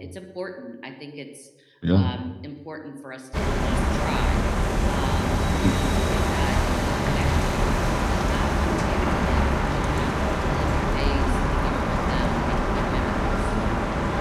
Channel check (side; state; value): both; identical; correlation 1.00